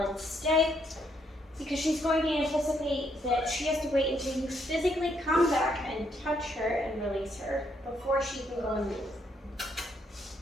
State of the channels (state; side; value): normal; both; correlation 0.73